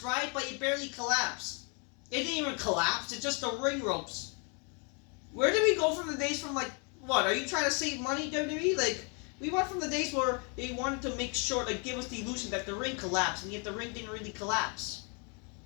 right? But it barely collapsed. It didn't even collapse. It's just the ring ropes. Where did we go from the days from, what? Are you trying to save money, WWE? We went from the days where they wanted to make sure, give us the illusion that the ring collapsed, and yet the ring didn't really collapse.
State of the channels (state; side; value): quieter; right; 35.8 dB